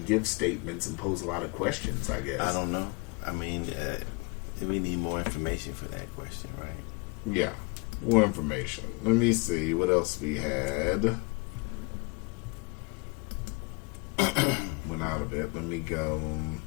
give statements and pose a lot of questions, I guess. I don't know. I mean, we need more information for that question, right? Yeah, more information. Let me see what else we had. Went out of it. Let me go.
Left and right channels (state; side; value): quieter; right; 29.0 dB